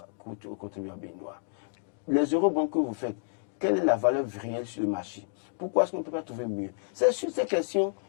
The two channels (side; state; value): right; silent; digital silence